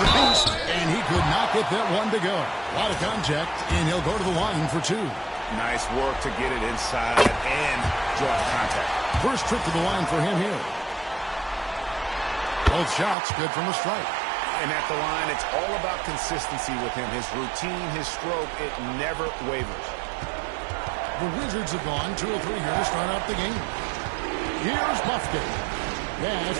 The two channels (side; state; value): left; drops out; at 13.2 s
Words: beast, and he could not get that one to go. A lot of contact, and he'll go to the line for 2. Nice work to get it inside and draw contact. First trip to the line for him here. Both shots good from the strike. And at the line, it's all about consistency with him. His routine, his stroke, it never wavers. The Wizards have gone 2 or 3 here to start out the game. Here's Buffkin. Pass